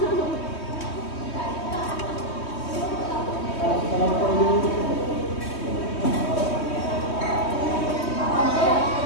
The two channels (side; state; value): right; late; 3.2 ms